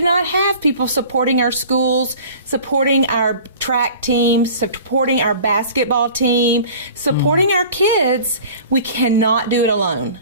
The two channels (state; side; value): inverted; both; correlation -0.44